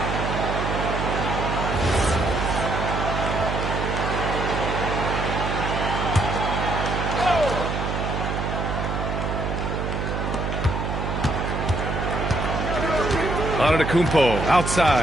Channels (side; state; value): right; noise; hum, 2 dB below the sound